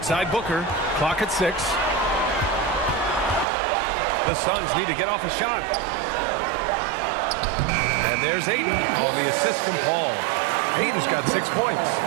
Booker. Clock at 6. The Suns need to get off a shot. And there's Ayton on the assist from Paul. Ayton's got 6 points.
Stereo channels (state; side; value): drops out; left; at 3.5 s